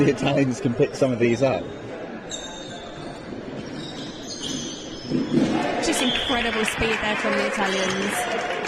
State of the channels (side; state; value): both; identical; correlation 1.00